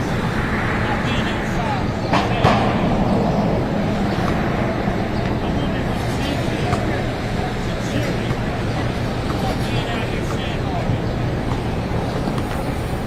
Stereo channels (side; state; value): both; identical; correlation 1.00